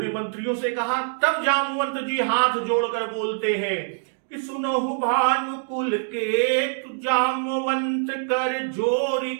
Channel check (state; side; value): silent; left; digital silence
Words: मंत्रियों से कहा, तब जामवंत जी हाथ जोड़कर बोलते हैं कि सुनहु भानुकुल के तु जामवंत कर जोरी